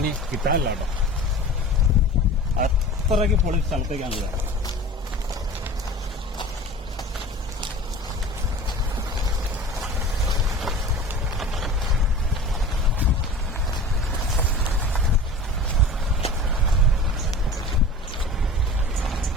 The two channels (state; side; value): normal; both; correlation 0.38